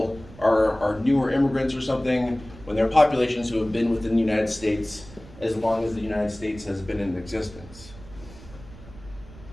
are newer immigrants or something, when there are populations who have been within the United States as long as the United States has been in existence.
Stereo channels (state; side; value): noise; right; rumble, 19 dB below the sound